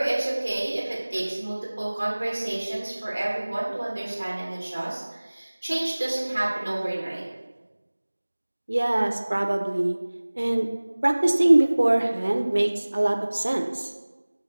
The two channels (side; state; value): both; inverted; correlation -1.00